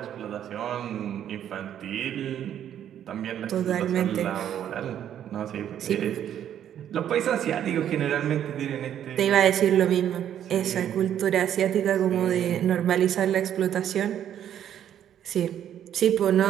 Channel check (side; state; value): left; quieter; 10.2 dB